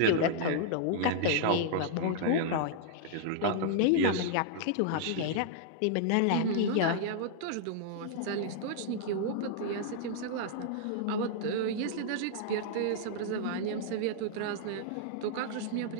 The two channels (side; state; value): both; different; correlation -0.01